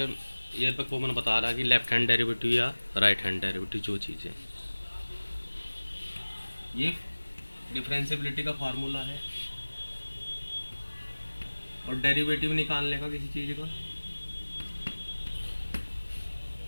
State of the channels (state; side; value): inverted; both; correlation -1.00